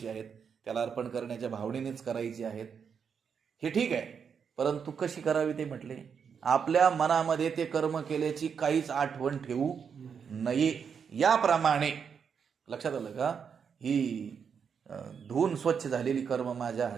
आहेत, त्याला अर्पण करण्याच्या भावनेनेच करायची आहेत, हे ठीक आहे. परंतु कशी करावी ते म्हटले, आपल्या मनामध्ये ते कर्म केल्याची काहीच आठवण ठेवू नये. याप्रमाणे, लक्षात आलं का? ही धुवून स्वच्छ झालेली कर्म माझ्या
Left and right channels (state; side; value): quieter; left; 6.7 dB